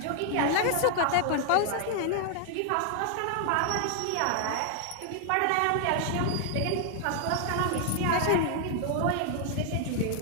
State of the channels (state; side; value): different; both; correlation 0.00